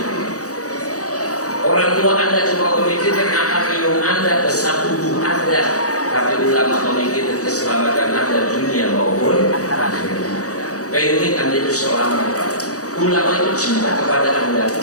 Orang tua Anda cuma memikirkan akan minum Anda, besar tubuh Anda, tapi ulama memikirkan keselamatan Anda dunia maupun akhirat. Pengen Anda itu selamat. Ulama itu cinta kepada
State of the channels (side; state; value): right; late; 0.66 ms